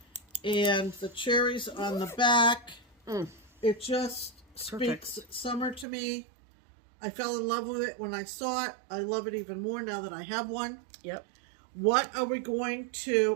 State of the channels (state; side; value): drops out; left; at 5.9 s